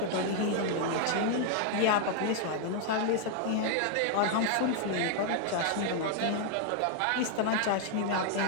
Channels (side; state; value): both; different; correlation 0.00